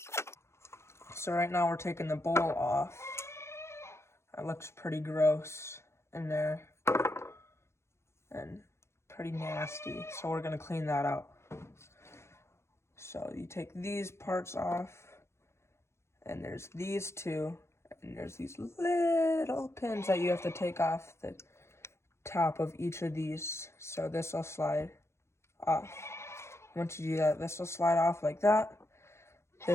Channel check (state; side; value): late; right; 0.13 ms